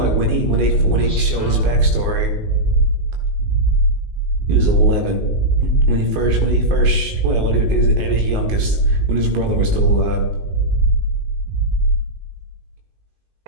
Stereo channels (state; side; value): late; left; 19 ms